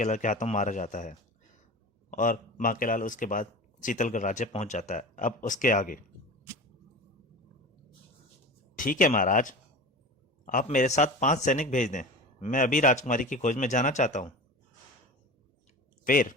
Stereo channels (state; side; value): normal; both; correlation 0.33